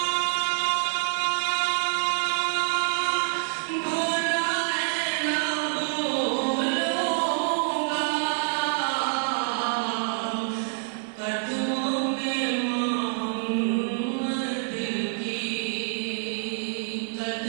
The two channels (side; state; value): left; silent; 60 dB below the other